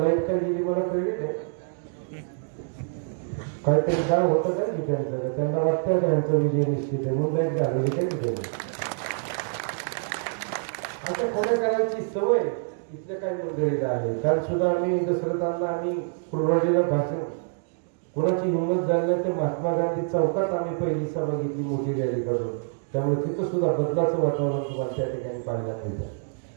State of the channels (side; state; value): left; silent; 61 dB below the other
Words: काय गेली मला कळली नाही, काहीतरी काय होतं काय ठिकाणचं, त्यांना वाटतं त्यांचा विजय निश्चित आहे म्हणून लाईट घालवली काय ठिकाणी. आता खोड्या करायची सवय इथल्या काही मंडळीला आहे. काल सुद्धा आम्ही दसरथांना आम्ही कुर्बानीला भाषण, कोणाची हिंमत झाली नाही ते महात्मा गांधी चौकात आम्ही पहिली सभा घेतली मोठी रॅली काढून. त्यामुळे तिथं सुद्धा बदलाचं वातावरण तुम्हाला त्या ठिकाणी पाहायला मिळतं.